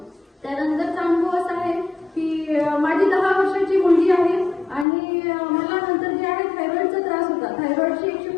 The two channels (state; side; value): drops out; right; at 4.9 s